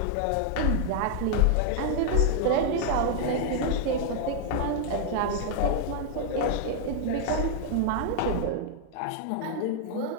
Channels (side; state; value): both; different; correlation 0.00